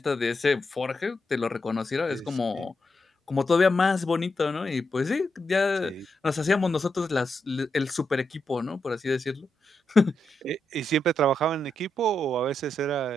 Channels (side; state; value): both; normal; correlation 0.84